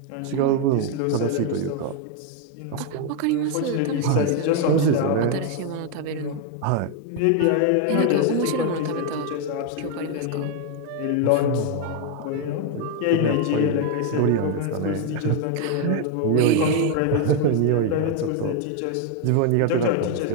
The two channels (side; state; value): both; different; correlation 0.01